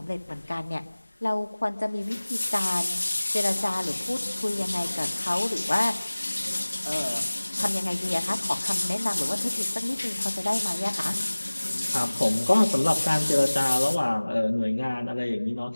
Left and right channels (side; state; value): both; inverted; correlation -1.00